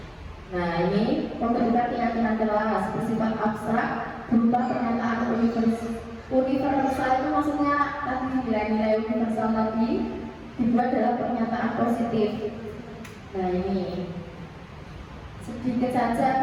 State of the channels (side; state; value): both; identical; correlation 1.00